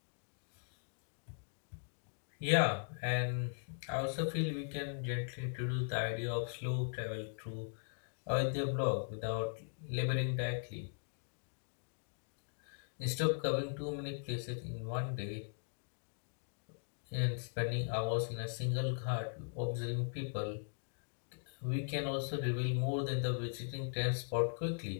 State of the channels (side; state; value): right; silent; digital silence